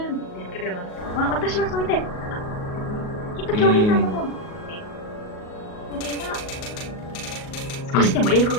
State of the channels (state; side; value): late; right; 38 ms